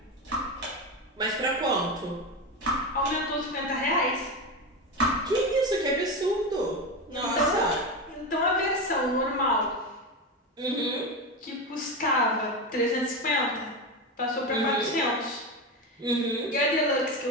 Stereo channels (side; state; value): both; normal; correlation 0.17